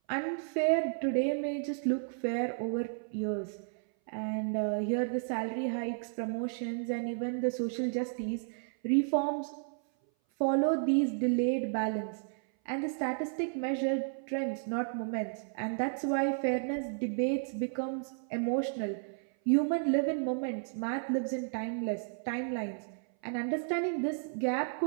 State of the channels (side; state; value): left; silent; 56 dB below the other